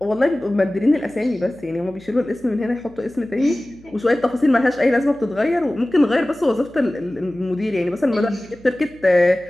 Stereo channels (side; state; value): left; noise; hum, 26 dB below the sound